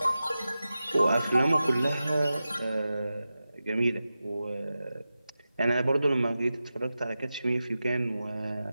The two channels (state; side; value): inverted; both; correlation -0.93